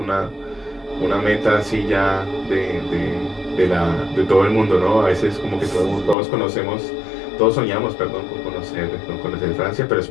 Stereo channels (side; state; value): right; drops out; at 6.2 s